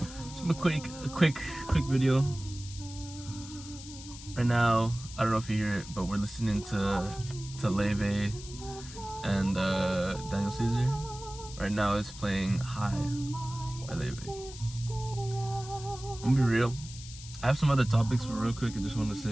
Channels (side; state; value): left; noise; hiss, 15 dB below the sound